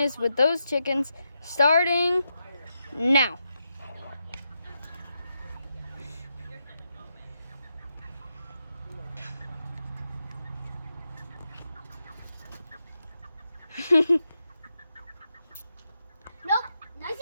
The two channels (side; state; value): both; inverted; correlation -0.86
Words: with those chickens starting now. nope,